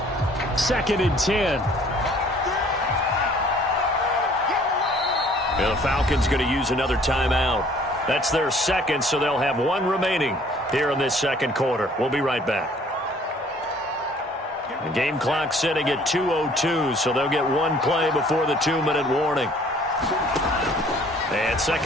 Second and 10. The Falcons going to use another timeout. That's their second, so they'll have one remaining here in this second quarter. We'll be right back. The game clock sitting at 2:02, so they'll get one play before the 2-minute warning. And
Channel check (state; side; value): normal; both; correlation 0.56